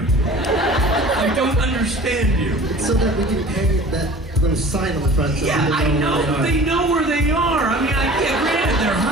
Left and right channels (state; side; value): normal; both; correlation 0.43